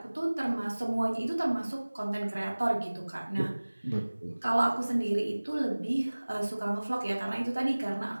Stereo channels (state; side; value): inverted; both; correlation -1.00